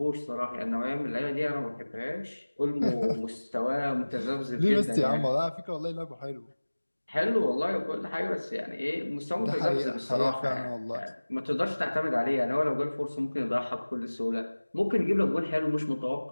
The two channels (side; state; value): both; inverted; correlation -1.00